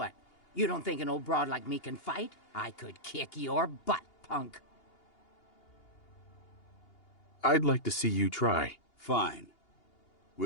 You don't think an old broad like me can fight? I could kick your butt, punk. I'd like to see you try. Fine.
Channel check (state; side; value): late; right; 2.8 ms